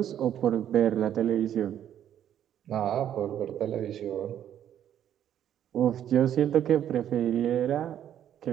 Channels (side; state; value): left; quieter; 10.4 dB